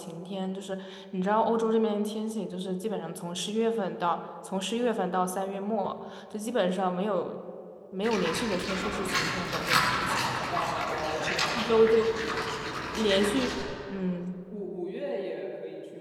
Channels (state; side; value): identical; both; correlation 1.00